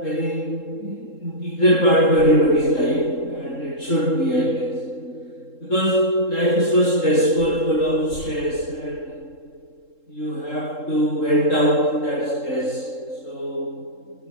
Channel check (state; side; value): late; right; 3.7 ms